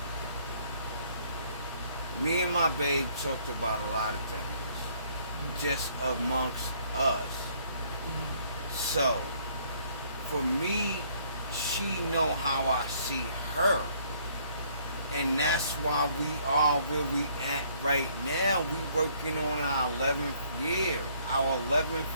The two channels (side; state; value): both; inverted; correlation -0.64